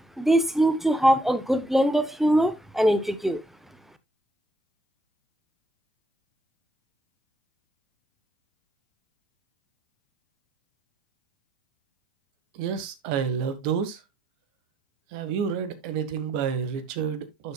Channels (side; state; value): both; normal; correlation 0.72